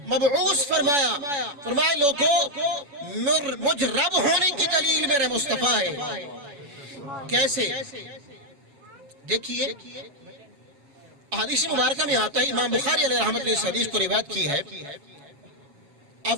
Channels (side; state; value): left; late; 7.1 ms